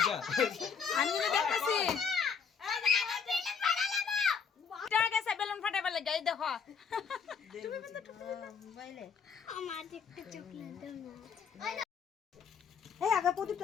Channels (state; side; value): quieter; right; 6.2 dB